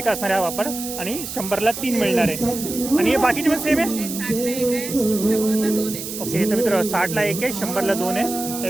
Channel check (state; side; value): noise; right; hiss, 8 dB below the sound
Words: असणार आहे हा पापड. आणि 100ला 3 मिळणार आहे. आणि हे बाकीचे पण सेम आहे. ओके तर मित्र 60ला 1 आहे 100ला 2 आहे.